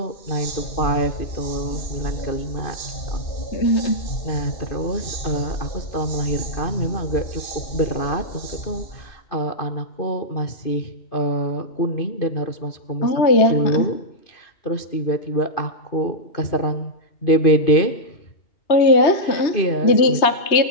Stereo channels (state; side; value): late; right; 2.5 ms